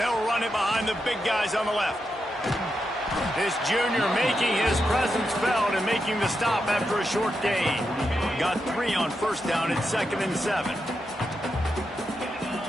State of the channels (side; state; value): both; normal; correlation 0.86